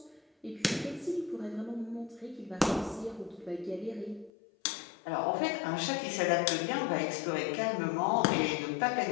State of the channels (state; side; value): drops out; right; at 4.3 s